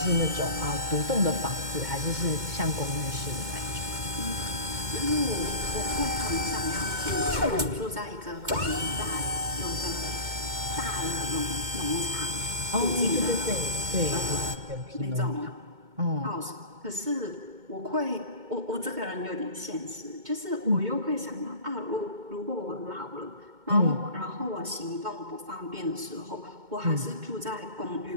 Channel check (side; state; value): left; late; 2.2 ms